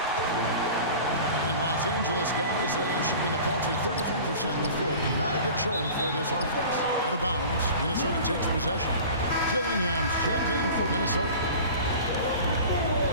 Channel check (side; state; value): both; inverted; correlation -0.39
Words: And Los Angeles guys shooting a paltry 33% in the fourth. Not a good showing for this offense. Out of bounds, Minnesota takes possession. Dillingham's checked in for Minnesota.